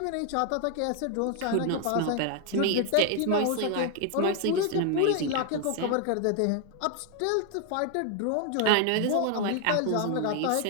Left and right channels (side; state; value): both; different; correlation 0.01